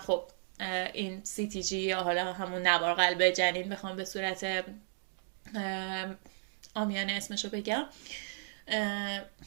این CTG یا حالا همون نوار قلب جنین بخوام به صورت عامیانه اسمشو بگم،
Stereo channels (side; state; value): left; silent; digital silence